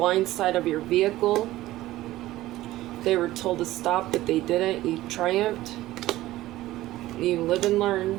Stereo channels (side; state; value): left; quieter; 16.1 dB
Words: side of your vehicle. They were told to stop, but they didn't. You triumphed. You live and